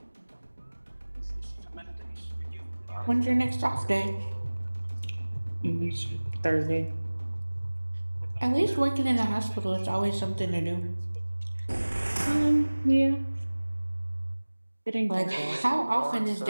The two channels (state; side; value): inverted; both; correlation -1.00